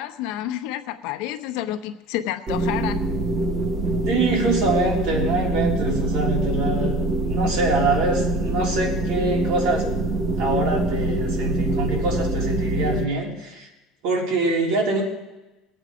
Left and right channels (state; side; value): normal; both; correlation 0.38